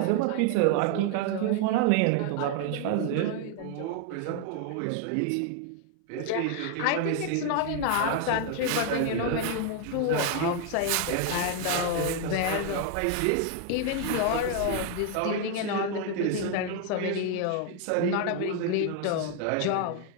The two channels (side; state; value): both; different; correlation 0.00